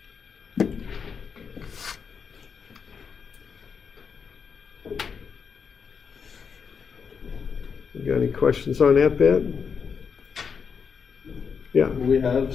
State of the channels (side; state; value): right; quieter; 6.2 dB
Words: You got any questions on that bit? Yeah. Will we have